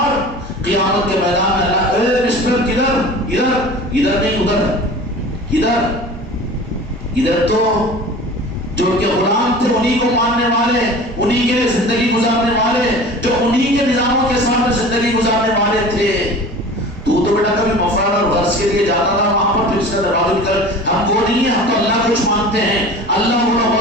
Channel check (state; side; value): normal; both; correlation 0.39